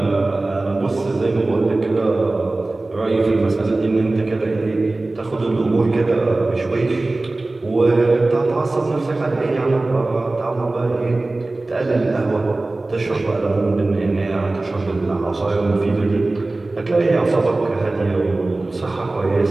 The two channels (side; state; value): left; quieter; 3.0 dB